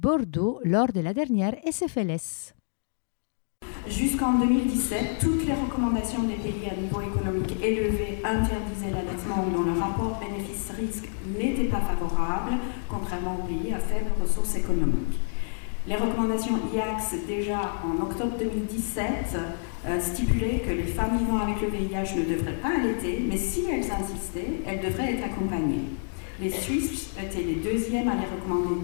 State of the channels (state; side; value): silent; right; digital silence